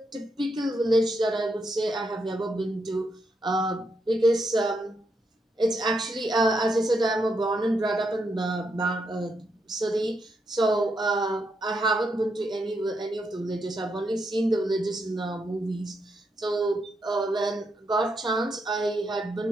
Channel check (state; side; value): normal; both; correlation 0.81